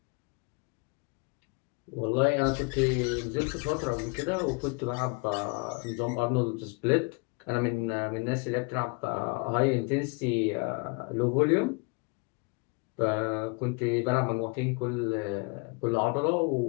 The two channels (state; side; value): quieter; right; 32.5 dB